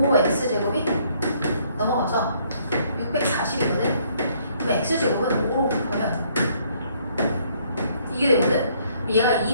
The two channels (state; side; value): inverted; both; correlation -0.65